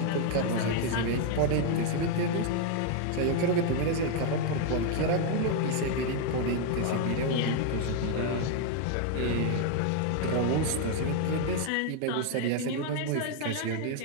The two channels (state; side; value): different; both; correlation 0.00